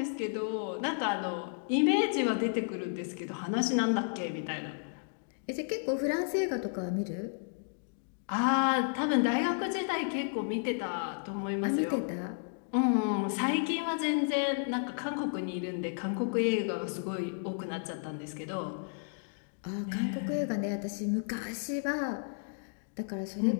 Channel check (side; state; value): right; silent; digital silence